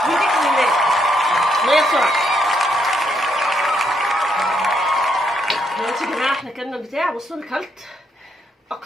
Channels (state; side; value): normal; both; correlation 0.75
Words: بيديك الماء. ميه بسرعه. دلوقتي يا جماعه احنا كلنا البتاع. بصوا انا كلت